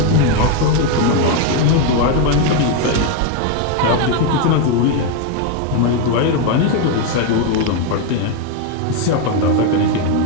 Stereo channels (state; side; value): different; both; correlation 0.01